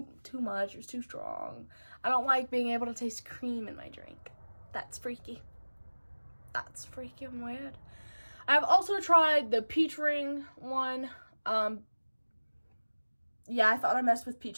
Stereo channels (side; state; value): both; inverted; correlation -1.00